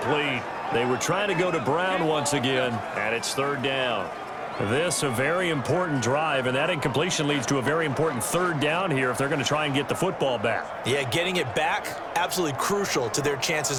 They were trying to go to Brown once again, and it's 3rd down. This a very important drive, and that incompletion leads to a very important 3rd down here if they're going to try and get the football back. Yeah, getting it back, absolutely crucial to their chances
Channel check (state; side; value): identical; both; correlation 1.00